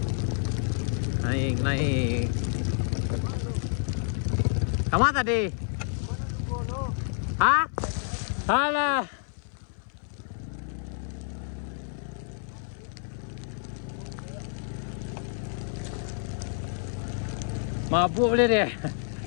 Kamu tadi? Hah? Alah. Mabuk boleh deh.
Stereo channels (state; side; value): silent; right; 59 dB below the other